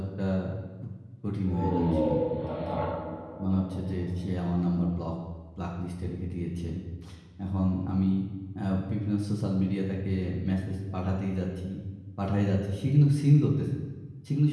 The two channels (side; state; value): both; identical; correlation 1.00